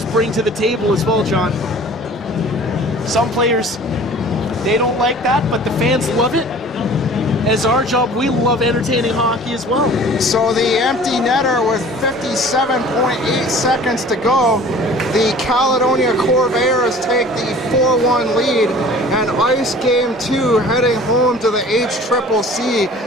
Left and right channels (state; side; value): normal; both; correlation 0.46